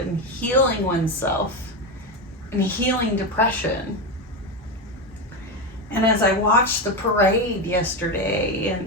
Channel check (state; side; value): normal; both; correlation 0.14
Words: healing oneself and healing depression. And as I watched the parade yesterday